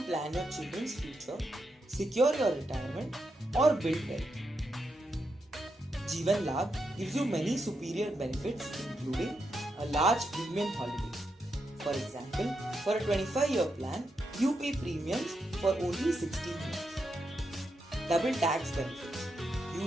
plan your children's future, secure your retirement, or build wealth. Jeevan Labh gives you many superior benefits including a large premium holiday. For example, for a 25-year plan, you pay premiums for only 16 years. Double tax benefits.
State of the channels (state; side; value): normal; both; correlation 0.84